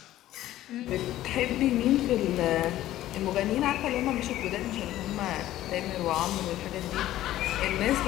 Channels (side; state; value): right; quieter; 14.1 dB